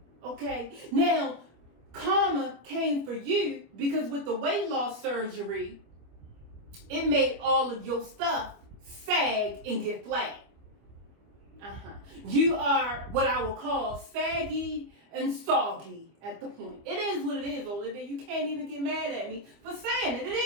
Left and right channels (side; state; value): left; late; 25 ms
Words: Okay? Now, karma came for you because with the weight loss surgery, it made all of your stuff sag and get flat. You are what I will call saggy and soggy at the point. It is what it is, Olivia. You can't even get mad at me for saying it. It